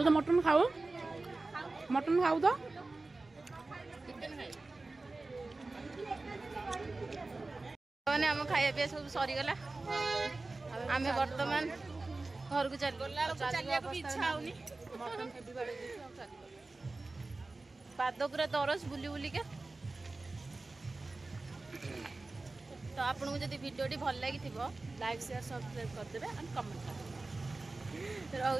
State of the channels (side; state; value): left; quieter; 3.3 dB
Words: ତ ମଟନ ଖାଉ ତ ମାନେ ଆମ ଖାଇବା ପିଇବା ସବୁ ସରିଗଲା ଆମେ ବର୍ତ୍ତମାନ ଘରକୁ ଚାଲିବାକୁ ଇଚ୍ଛା ହଉନି ପାଦ ପୁରା ଦରଜ ବୁଲି ବୁଲିକା ତ ଆପଣଙ୍କୁ ଯଦି ଭିଡ଼ିଓଟି ଭଲ ଲାଗିଥିବ ଲାଇକ୍ ସେୟାର ସବସ୍କ୍ରାଇବ୍ କରିଦେବେ ଆଣ୍ଡ କମେଣ୍ଟ